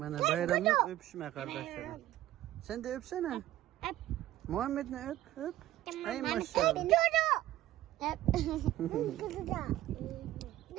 bayramlık öpüşme kardeşlerim. Sen de öpsene. Öp. Muhammed ne öp öp. Ay Ben maşallah. öp. Öp. Kızı da.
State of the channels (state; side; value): quieter; left; 14.6 dB